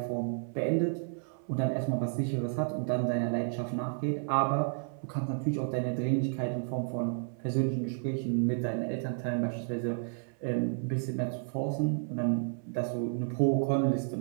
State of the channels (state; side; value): silent; left; 57 dB below the other